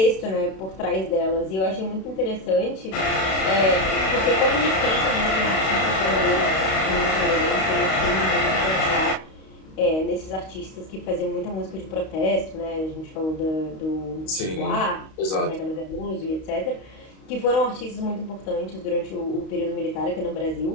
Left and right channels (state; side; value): late; right; 32 ms